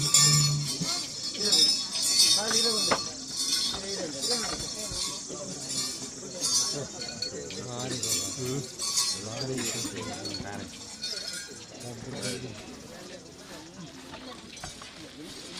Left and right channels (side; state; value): both; identical; correlation 1.00